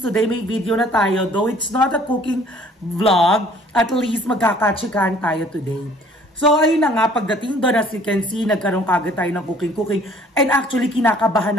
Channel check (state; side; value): normal; both; correlation 0.55